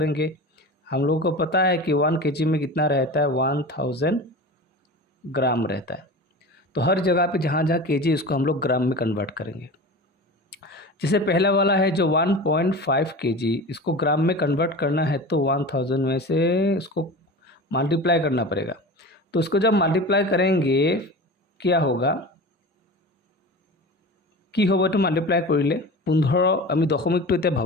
हम लोगों को पता है कि 1 kg में कितना रहता है, 1000 ग्राम रहता है। तो हर जगह पे जहाँ जहाँ kg उसको हम लोग ग्राम में कन्वर्ट करेंगे। जैसे पहला वाला है जो 1.5 kg, इसको ग्राम में कन्वर्ट करना है तो 1000 में से इसको मल्टीप्लाई करना पड़ेगा। तो उसको जब मल्टीप्लाई करेंगे क्या होगा, কি হ'ব এইটো মাল্টিপ্লাই কৰিলে 15, আমি দশমিকটো এতিয়া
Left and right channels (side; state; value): both; normal; correlation 0.32